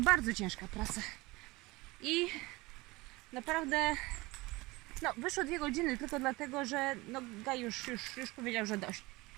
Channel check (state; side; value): quieter; left; 22.1 dB